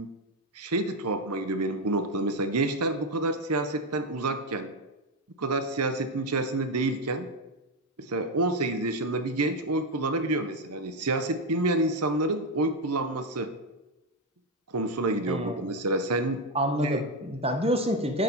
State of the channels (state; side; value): normal; both; correlation 0.07